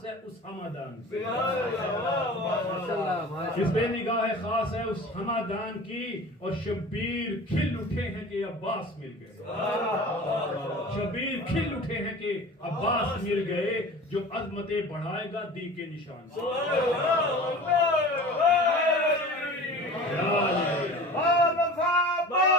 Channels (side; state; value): both; normal; correlation 0.39